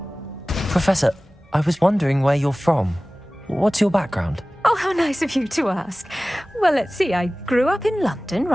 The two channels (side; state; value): both; normal; correlation 0.98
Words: Professor, I was wondering where you're from. What's your background? Oh, how nice of you to ask. Well, let's see. I grew up in London,